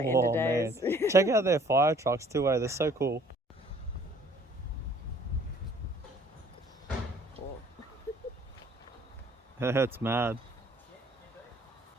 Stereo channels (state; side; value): normal; both; correlation 0.57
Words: oh man. Check out their fire trucks too, eh? They're so cool. That's mad.